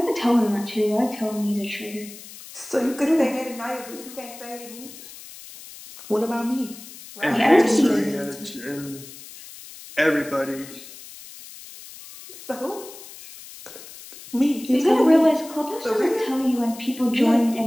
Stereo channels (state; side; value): noise; left; hiss, 16 dB below the sound